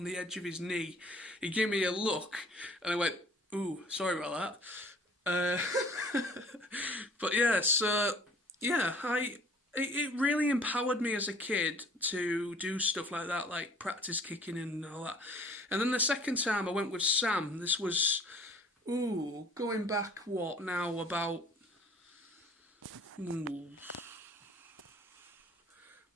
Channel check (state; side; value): normal; both; correlation 0.53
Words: edge of his knee. He gave me a look, and I went, "Ooh, sorry about that." But yeah, so yeah, it really empowered me as a kid to do stuff like that, like practice kicking and all that. And then the second time I went with Sam. This was going back about maybe